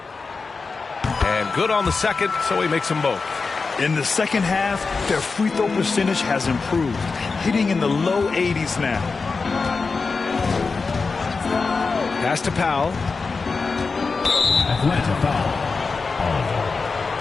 And good on the second, so he makes them both. In the second half, their free throw percentage has improved, hitting in the low 80s now. Pass to Powell. Atlanta foul.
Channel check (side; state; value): right; quieter; 4.4 dB